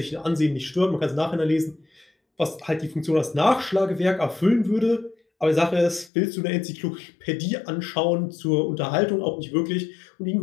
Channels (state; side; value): drops out; right; at 6.1 s